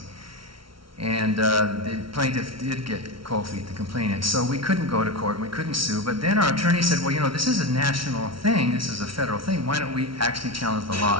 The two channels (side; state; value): left; late; 0.74 ms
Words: And the plaintiff did get cold feet, the complainant. So we couldn't go to court and we couldn't sue. But then our attorney said, well, you know, this is a national thing. This is a federal thing. Why don't we actually challenge the law